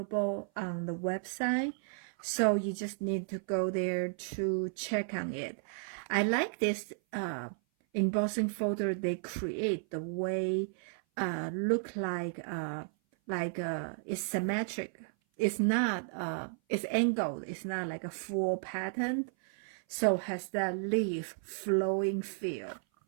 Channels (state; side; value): silent; left; 55 dB below the other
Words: on the website. So you just need to go there to check on it. I like this embossing folder. They create the way look like it's symmetric. It's not it's angled. It's not like a full pattern. So has that leaf flowing feel.